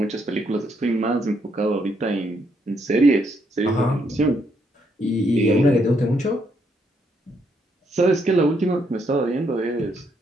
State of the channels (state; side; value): normal; both; correlation 0.75